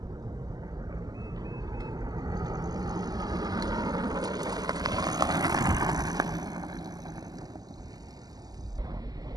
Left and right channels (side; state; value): left; late; 0.19 ms